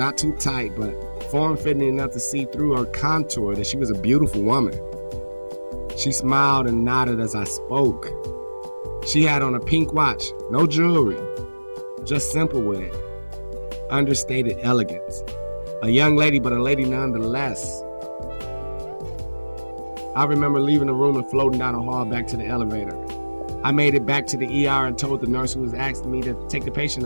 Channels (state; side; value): inverted; both; correlation -1.00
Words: too tight, but form-fitting enough to see through her contour that she was a beautiful woman. She smiled and nodded as I spoke. She had on a pink watch, no jewelry, just simple with it. Understated elegance. A young lady, but a lady nonetheless. I remember leaving the room and floating down the hall back to the elevator. I made it back to the ER and told the nurse who was asking me to take the